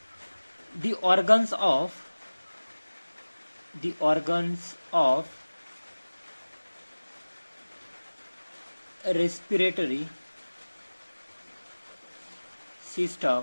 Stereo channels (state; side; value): inverted; both; correlation -1.00